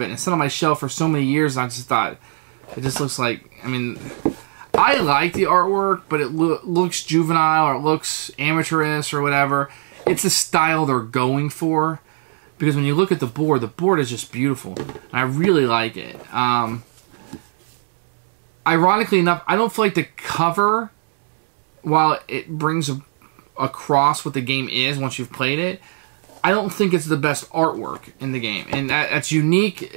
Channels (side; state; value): left; silent; 66 dB below the other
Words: it. And it's sat on my shelf for so many years, and I just thought, it just looks like, I mean, I like the artwork, but it looks juvenile or it looks amateurish or whatever. It's the style they're going for, because when you look at the board is just beautiful. And I really like it. Ironically enough, I don't feel like the cover, while it brings across what the game is once you've played it, I don't think it's the best artwork in the game. And that's unique